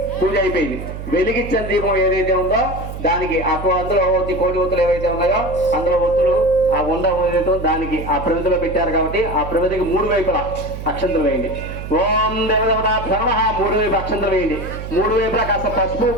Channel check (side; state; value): right; noise; hum, 9 dB below the sound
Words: పూజ అయిపోయింది. వెలిగించిన దీపం ఏదైతే ఉందో దానికి అందులో కోటి ఒత్తులు ఏవైతే ఉన్నాయో అందులో ఒత్తులు ఆ ఉండ ఏదైతే దానికి ఆ ప్రమిదలో పెట్టారు కాబట్టి ఆ ప్రమిదకి మూడు వైపులా అక్షంతలు వేయండి. ఓం దేవదేవతాభ్యో నమః. మూడు వైపు అక్షంతలు వేయండి. మూడు వైపులా కాస్త పసుపు